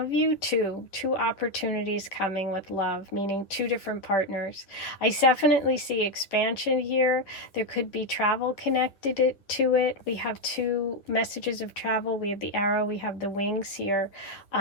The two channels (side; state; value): right; late; 10 ms